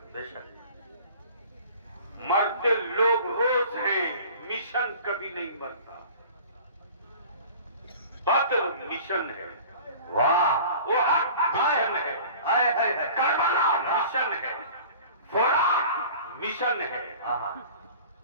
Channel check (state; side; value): inverted; both; correlation -0.43